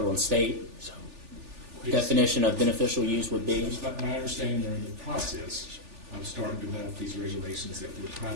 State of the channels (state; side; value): late; left; 3.4 ms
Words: and state definition of beneficial use would be? But my understanding, they're in the process of starting to develop these regulations that would try